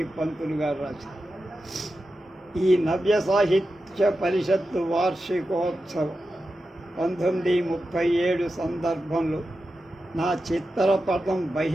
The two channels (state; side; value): normal; both; correlation 0.91